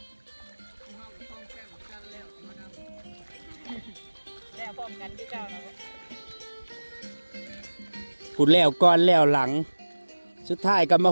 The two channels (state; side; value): inverted; both; correlation -1.00